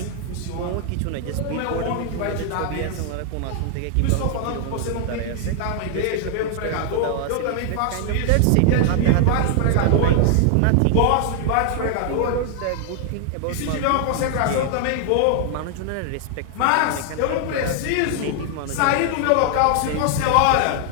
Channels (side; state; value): both; different; correlation 0.00